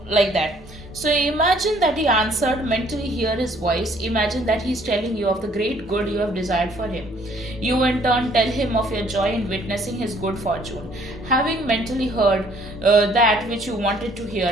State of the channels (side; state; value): both; normal; correlation 0.61